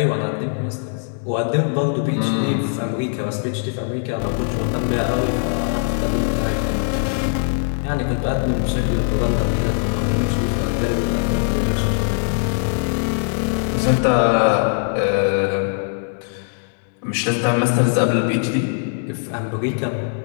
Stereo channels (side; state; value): right; silent; 65 dB below the other